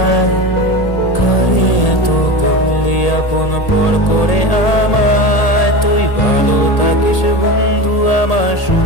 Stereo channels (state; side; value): late; right; 1.8 ms